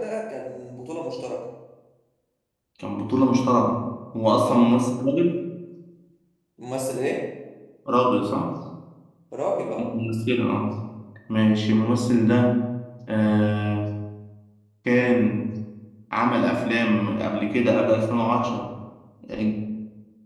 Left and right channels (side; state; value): both; identical; correlation 1.00